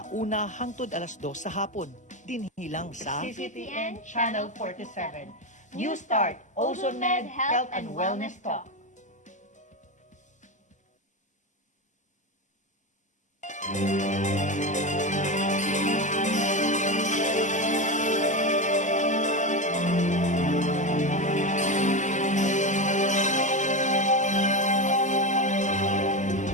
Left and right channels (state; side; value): normal; both; correlation 0.16